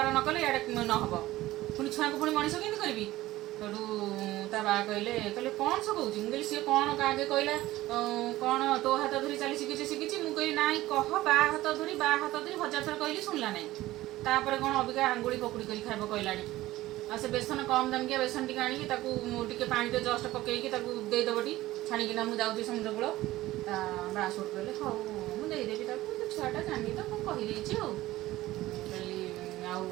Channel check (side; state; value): left; quieter; 16.6 dB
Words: ନ କଲେ ଇଆଡ଼େ ନ ହେବ। ପୁଣି ଛୁଆଙ୍କୁ ପୁଣି ମଣିଷ କେମିତି କରିବି? ସେଠୁ ତା ବାଆ କହିଲେ କ'ଣ ସେ କହୁଛି? ମୁଁ କହିଲି ସିଏ କ'ଣ ଆଗେ କହିଲା କ'ଣ ତୋ ହାତ ଧରି ଚାଲି ଶିଖିଛି ଶିଖିଛି। ମୁଁ କହିଲି ନାଇଁ କହ ବାଁ ହାତ ଧରି 1000 ଥର କହିଲି ଶୁଣିଲା ନାହିଁ। ତାପରେ କ'ଣ ଅବିକା ଆଙ୍ଗୁଳି ପକୁଡ଼ି କରି ଖାଇବ କହିଲାଣି। ଆଉ ସେ ବେସନ କମ୍ ଦାମିକିଆ ବେସନ ଟିକେ ଆଣିକି ତାକୁ ଟିକେ ପାଣିରେ ଜଷ୍ଟ ପକେଇକି ତାକୁ ଦେଇଦେବଟି ଛାଣିକିନା, ମୁଁ ଯାଉଛି ସମୁଦ୍ର କୂଳ। ତା ବାଆ ସୋଟ କହିଲେ ହଉ ମୁଁ ଦେଇଦେବି ତାକୁ, ଛୁଆଟା ଜାଣିନି ତ ମୁଁ କହିଦେଇଛି। ଆଉ କହିଲି ଆଉ